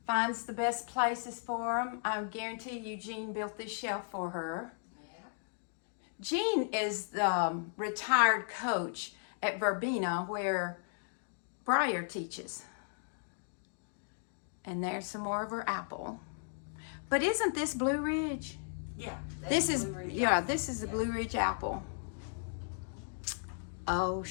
finds the best places for them. I guarantee you Jean built this shelf for her. Yeah. Jean is the retired coach at Verbena where Breyer teaches. And there's some more of her apple. But isn't this Blue Ridge? Yeah. This is the Blue Ridge apple. Oh,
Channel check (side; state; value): right; silent; digital silence